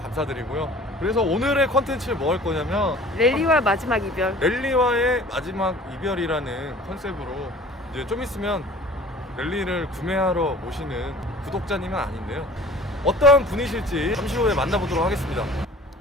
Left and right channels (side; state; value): both; normal; correlation 0.46